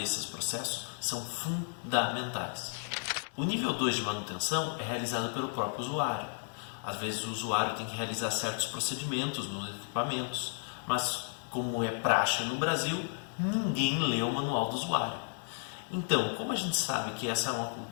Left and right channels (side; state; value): right; silent; 56 dB below the other